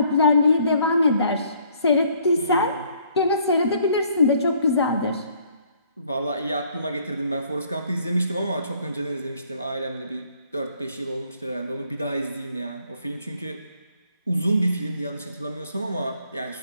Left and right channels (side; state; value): both; inverted; correlation -0.64